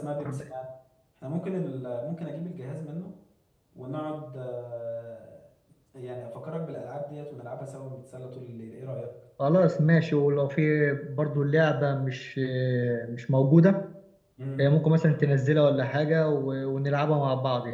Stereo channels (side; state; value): both; identical; correlation 1.00